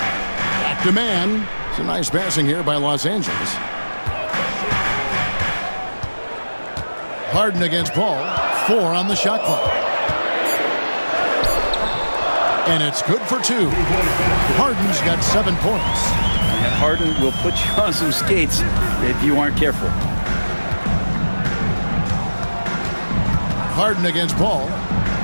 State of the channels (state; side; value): inverted; both; correlation -1.00